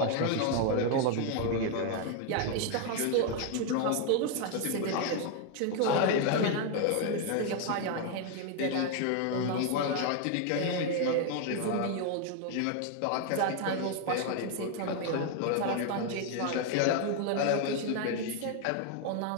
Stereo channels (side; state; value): both; different; correlation 0.00